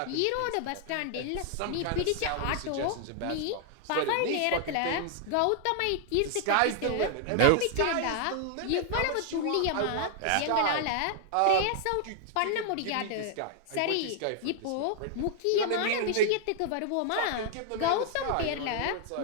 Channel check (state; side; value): different; both; correlation 0.00